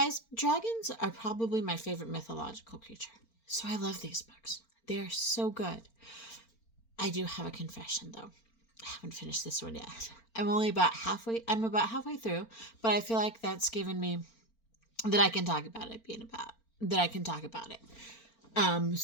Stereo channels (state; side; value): late; right; 4.4 ms